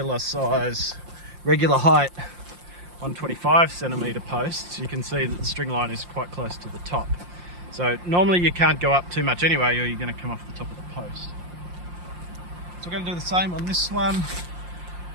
height 125 centimeter posts, you can see that the string line is quite close to the top. So normally you can't go up too much anyway, or you're going to come off the top of the post. So we're going to do the same on this one.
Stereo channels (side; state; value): left; late; 5.7 ms